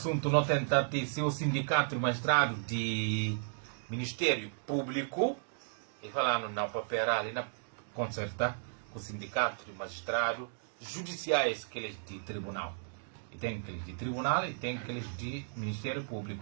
não tenta ter seu sindicato de magistrado de Ministério Público e falando na papel ali na concerta com o sindicato de magistrado judiciais que eles de tribunal. E tem aqueles de tribunal e tem aqueles de Ministério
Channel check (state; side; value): silent; left; digital silence